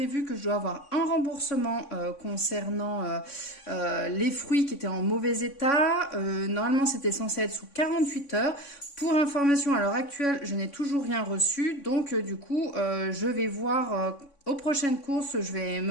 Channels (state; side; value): late; right; 3.5 ms